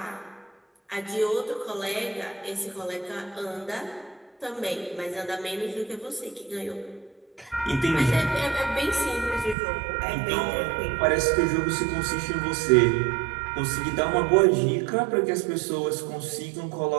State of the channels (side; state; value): left; drops out; at 9.6 s